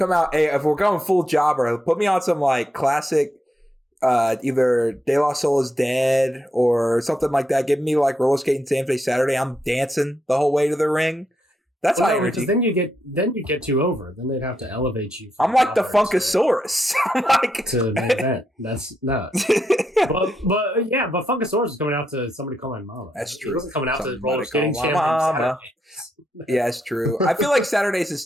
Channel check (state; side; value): normal; both; correlation 0.82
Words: out. Hey, if we're going full jobber, put me on some like classic, either De La Soul Is Dead or something like that. Give me like roller skating Saturday. I'm dancing the whole way to the ring. That's high energy. Then you get too over. Then they'd have to elevate you. I'm like the Funkasaurus. I'm like to main event. That's no. but Funkasaurus is coming out to Somebody Call My Mama. That's true. He wasn't coming out to roller skating Mama. Yeah, it's true. I feel like Saturdays